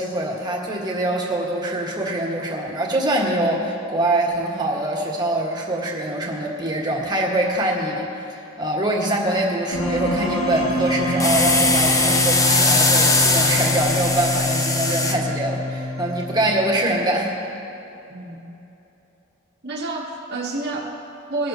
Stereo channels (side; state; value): both; normal; correlation 0.25